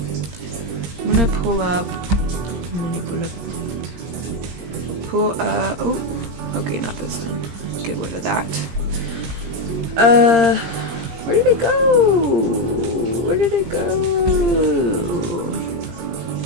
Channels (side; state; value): left; late; 17 ms